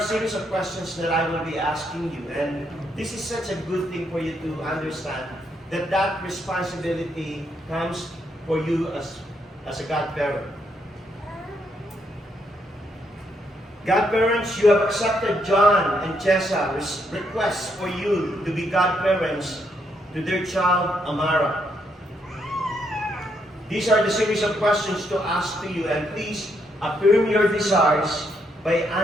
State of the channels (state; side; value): normal; both; correlation 0.76